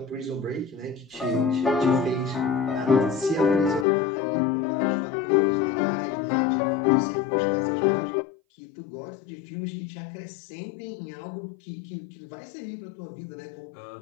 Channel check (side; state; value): right; drops out; at 3.9 s